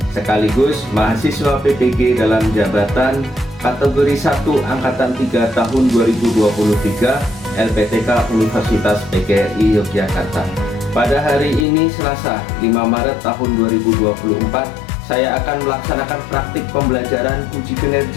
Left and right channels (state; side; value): drops out; right; at 11.7 s